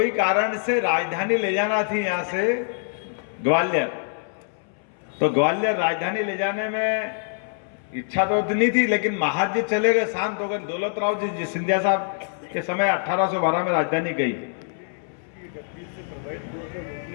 कारण से राजधानी ले जाना थी यहाँ से ग्वालियर। तो ग्वालियर राजधानी ले जाने में इच्छा तो नहीं थी, लेकिन महाराज जी चले गए, शांत हो गए। दौलत राव जी सिंधिया साहब के समय 1812 में राजधानी गई।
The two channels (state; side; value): silent; right; 62 dB below the other